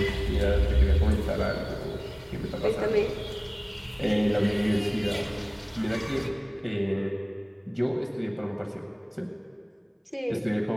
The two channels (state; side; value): identical; both; correlation 1.00